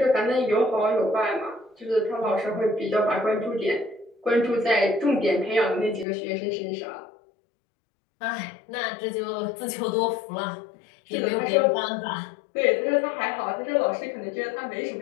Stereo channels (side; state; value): right; drops out; at 6.1 s